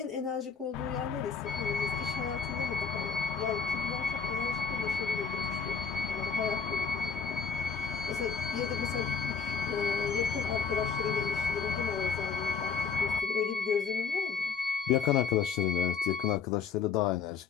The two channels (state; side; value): quieter; right; 5.9 dB